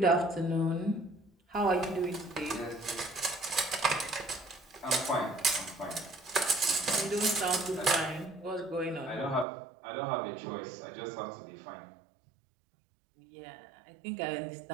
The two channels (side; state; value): left; drops out; at 9.5 s